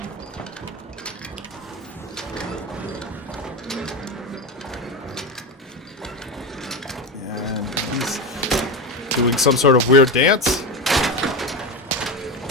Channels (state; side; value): normal; both; correlation 0.18